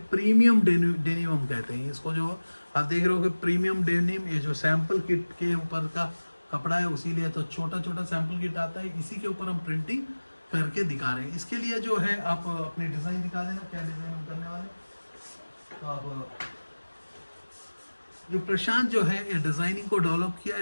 प्रीमियम डेनिम हम कहते हैं इसको। जो आप देख रहे हो कि प्रीमियम डेनिम, ये जो सैंपल किट के ऊपर का कपड़ा है, उसीलिए तो छोटा छोटा सैंपल किट आता है, इसी के ऊपर हम प्रिंटिंग करके दिखा रहे हैं। इसके लिए जो है आप अपनी डिज़ाइन दिखा देना, क्या डिज़ाइन हम करने वाले। तो आप जो प्रशांत जो है ये डिज़ाइनिंग को डेवलप किया है।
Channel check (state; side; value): inverted; both; correlation -1.00